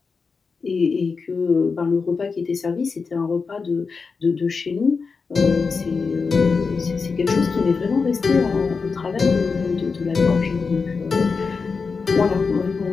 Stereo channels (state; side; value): quieter; right; 4.9 dB